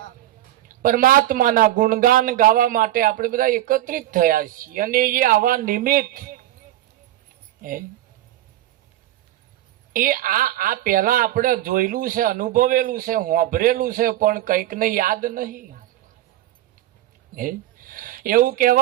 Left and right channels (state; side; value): quieter; left; 14.2 dB